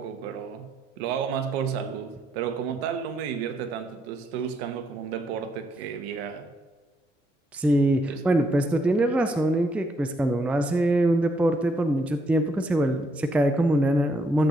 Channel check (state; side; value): normal; both; correlation 0.74